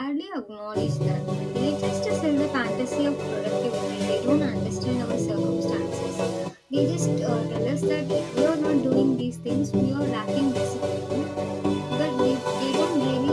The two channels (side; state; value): both; identical; correlation 1.00